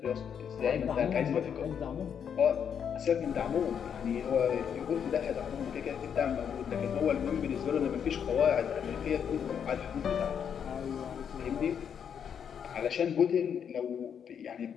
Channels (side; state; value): right; quieter; 7.8 dB